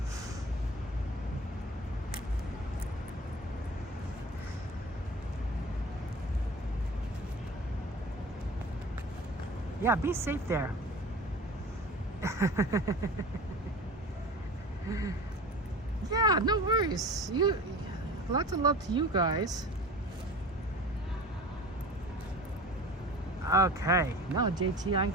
Yeah, be safe there. Yeah, no worries. Lots of love to you guys. Okay, no, JT, I'm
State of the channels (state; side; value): normal; both; correlation 0.37